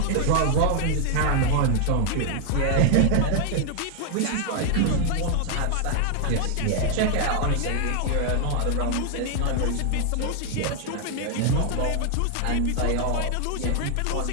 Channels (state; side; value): different; both; correlation 0.00